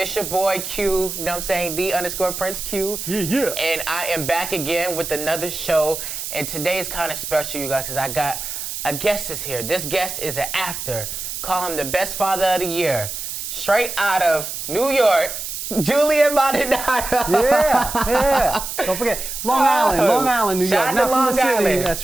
your boy Q, you know what I'm saying? _Prince Q. Yeah. And I am back again with another show. And today is kind of special, you guys, because I got a guest is here. This guest is an actor. Call him the best father of the year. Straight out of New York, Julian Maldonado. Yeah. Don't forget, Long Island, New York. Shout out to Long from the city. Island. That's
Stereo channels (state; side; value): noise; right; hiss, 6 dB below the sound